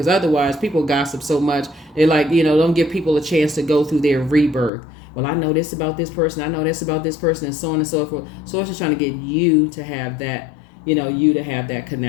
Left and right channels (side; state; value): right; drops out; at 4.7 s